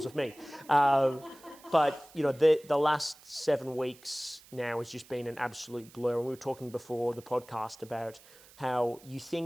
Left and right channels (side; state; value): right; noise; hiss, 24 dB below the sound